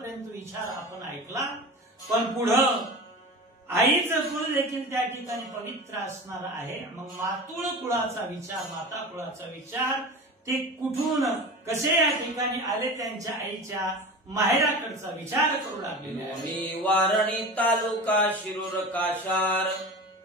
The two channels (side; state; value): both; normal; correlation 0.32